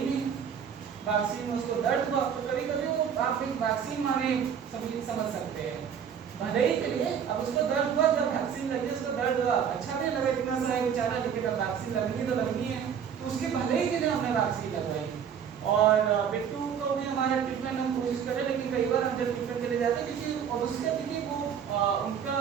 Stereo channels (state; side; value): quieter; left; 7.8 dB